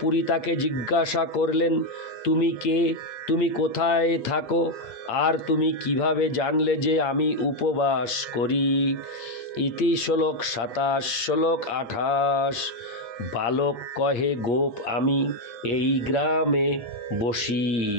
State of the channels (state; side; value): late; right; 8.6 ms